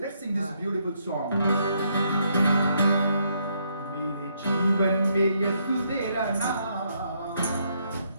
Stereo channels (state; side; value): inverted; both; correlation -0.74